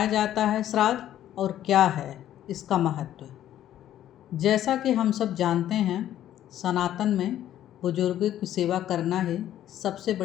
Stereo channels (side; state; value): right; quieter; 11.9 dB